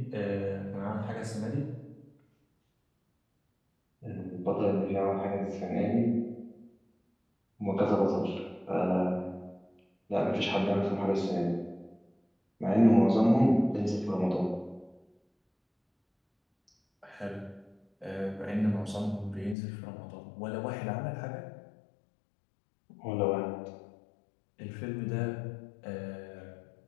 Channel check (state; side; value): drops out; right; at 19.6 s